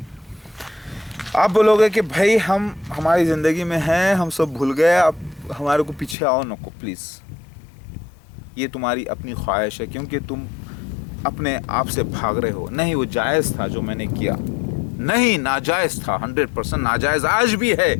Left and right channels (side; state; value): right; drops out; at 6.2 s